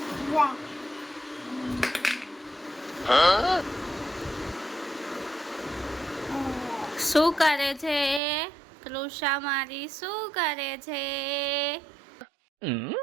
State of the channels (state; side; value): drops out; left; at 8.2 s